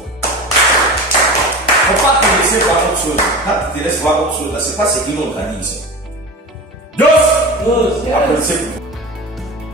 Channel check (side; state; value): both; normal; correlation 0.31